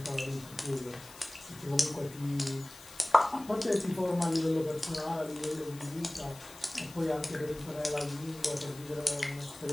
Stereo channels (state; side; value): noise; left; hiss, 18 dB below the sound